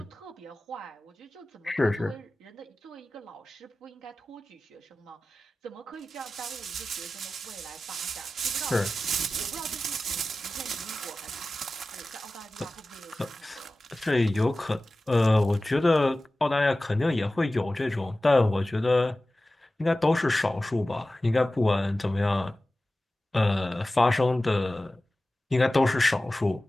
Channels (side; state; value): both; normal; correlation 0.96